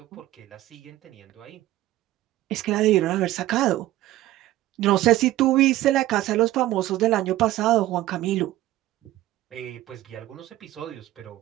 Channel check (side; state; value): left; quieter; 15.4 dB